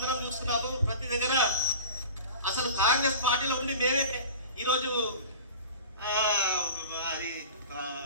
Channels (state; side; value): inverted; both; correlation -0.37